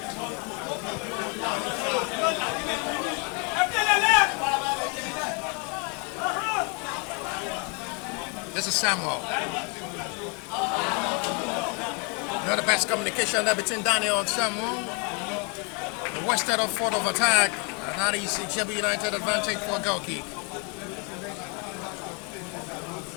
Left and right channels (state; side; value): quieter; right; 34.4 dB